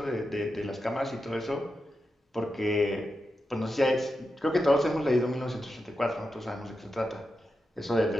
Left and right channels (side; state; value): both; normal; correlation 0.89